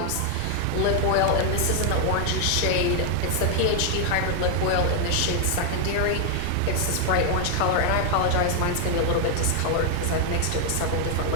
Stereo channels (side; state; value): both; different; correlation 0.00